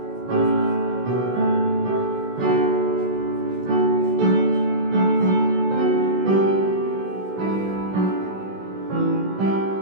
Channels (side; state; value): left; late; 16 ms